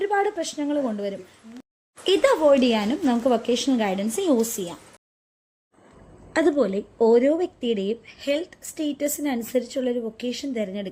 പ്രശ്നങ്ങൾ കൊണ്ടുവരും. ഇത് അവോയ്ഡ് ചെയ്യാനും നമുക്ക് വൊക്കേഷണൽ ഗൈഡൻസ് യൂസ് ചെയ്യാം. അതുപോലെ ഓരോ വ്യക്തിയുടെയും ഹെൽത്ത് സ്റ്റേറ്റസിനനുസരിച്ചുള്ളൊരു വൊക്കേഷൻ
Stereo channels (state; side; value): identical; both; correlation 1.00